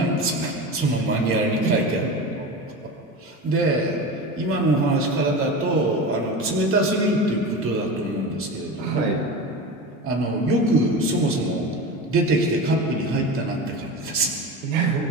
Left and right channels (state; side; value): normal; both; correlation 0.28